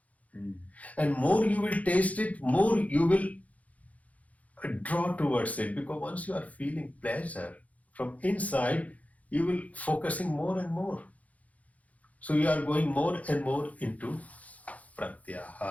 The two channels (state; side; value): late; right; 0.070 ms